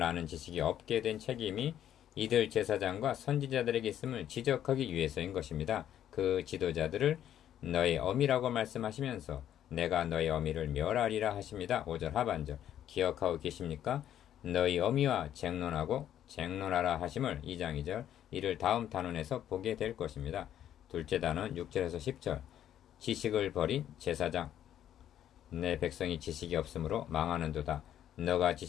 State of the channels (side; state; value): right; quieter; 10.8 dB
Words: 아는 지식이 없게 된 책임이 이들 제사장과 선지자들에게 있음을 지적하기 위해서인 것입니다. 그 지도자들을 너의 어미라고 말씀하시면서 내가 너의 어미를 멸하리라 하십니다. 5절 하반절 기억하고 계십니까? 너희 어미와 쟁론하라 하심을 2장 2절 이를 다음 단원에서 보게 될 것입니다. 둘째 단원 6절에서 10절 지식을 버린 제사장 내 백성이 지식이 없으므로 망하는도다. 너가